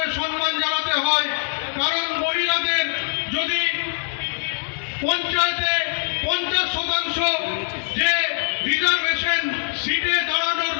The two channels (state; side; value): silent; right; 64 dB below the other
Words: সম্মান জানাতে হয়। কারণ মহিলাদের যদি পঞ্চায়েতে 50% যে রিজার্ভেশন সিটে দাঁড়ানোর